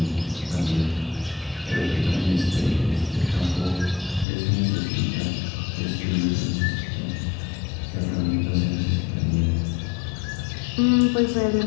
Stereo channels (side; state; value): right; drops out; at 4.2 s